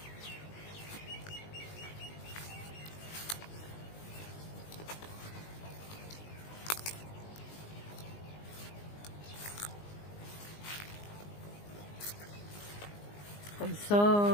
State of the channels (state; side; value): late; right; 19 ms